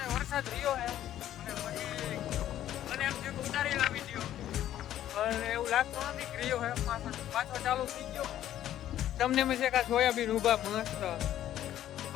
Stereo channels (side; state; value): right; quieter; 12.1 dB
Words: વરસાદ રહ્યો હે અને પછી મને એમ થયું ઉતારી લાવી દો, પણ એવું લાગતું નથી કે રહ્યો હે. પાછો ચાલુ થઈ ગયો. તમને મેં છે કે સોયાબીન ઊભા મસ્ત